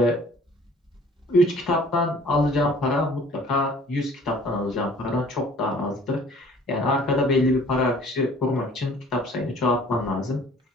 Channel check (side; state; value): both; normal; correlation 0.52